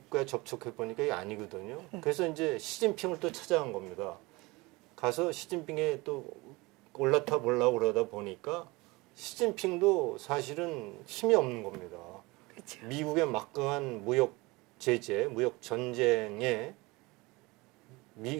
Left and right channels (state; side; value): quieter; left; 23.5 dB